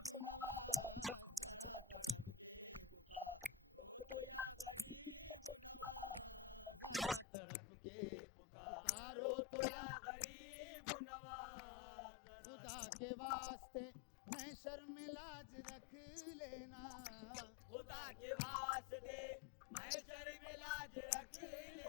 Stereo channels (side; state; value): right; drops out; at 7.2 s